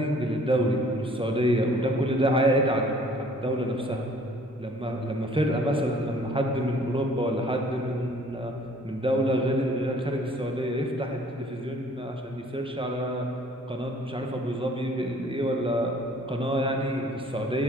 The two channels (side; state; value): both; normal; correlation 0.56